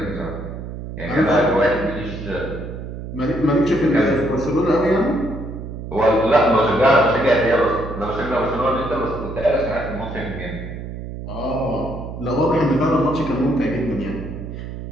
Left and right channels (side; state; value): right; noise; hum, 9 dB below the sound